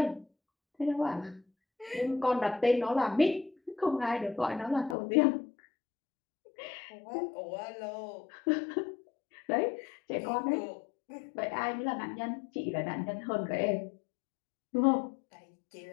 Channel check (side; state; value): right; drops out; at 5.0 s